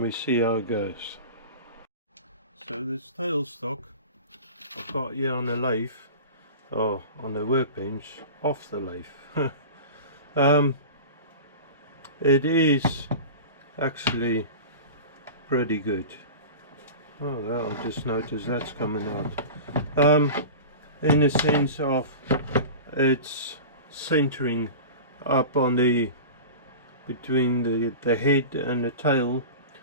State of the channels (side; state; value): both; inverted; correlation -0.33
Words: we see how it goes. So this tailstock I've got here on the lathe, or on the workbench, off the lathe. It is actually pretty good. Oh well, I just noticed that's coming out. In the sense of it's centering up on the, between the head and the tail,